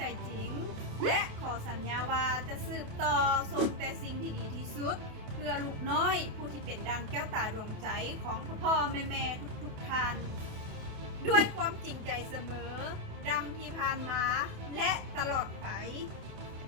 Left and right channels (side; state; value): left; late; 28 ms